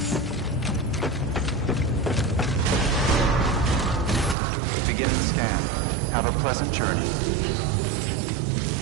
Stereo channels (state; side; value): drops out; left; at 4.4 s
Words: Beginning scan. Have a pleasant journey.